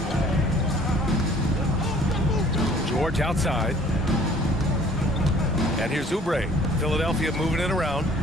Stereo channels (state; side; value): normal; both; correlation 0.54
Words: George outside. And here's Oubre. Philadelphia moving it around.